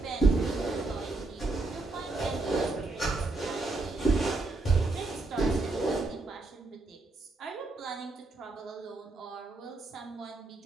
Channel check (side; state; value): left; quieter; 3.3 dB